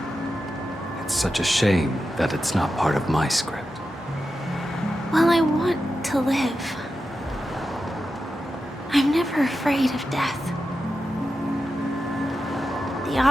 It's such a shame that it's not part of my script. Well, I want to live. I'm never afraid of death. The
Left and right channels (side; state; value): both; normal; correlation 0.90